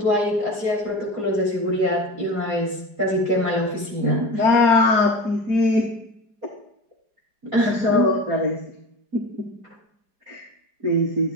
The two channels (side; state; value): left; late; 4.9 ms